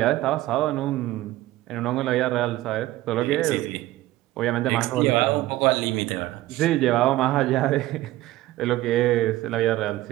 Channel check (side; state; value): left; quieter; 16.5 dB